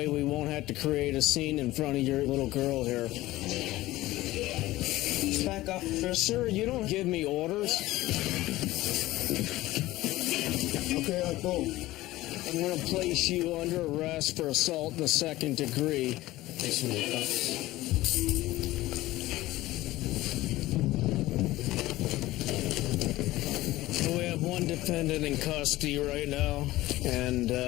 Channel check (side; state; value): right; quieter; 17.2 dB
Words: we won't have to create a scene in front of your little girl here. Back up. Sir, you don't give me orders. Okay, I'll go. I'm going to place you under arrest for assault in the second degree. We have one defendant in custody right now, and